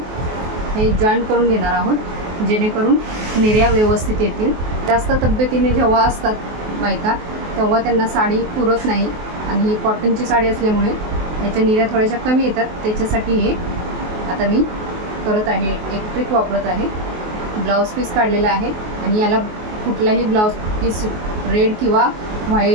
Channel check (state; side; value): late; left; 23 ms